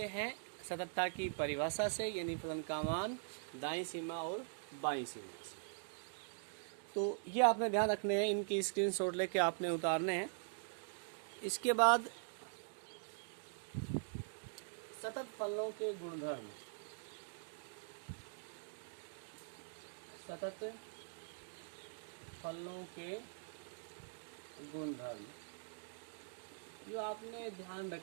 हैं सततता की परिभाषा से, यानी फलन का मान दाईं सीमा और बाईं सीमा से। तो ये आपने ध्यान रखने हैं, इनकी स्क्रीनशॉट लेके आपने उतारने हैं। इसके बाद सतत फलनों के गुणधर्म। सतत फलनों के गुणधर्म जो आपने ध्यान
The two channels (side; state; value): left; silent; digital silence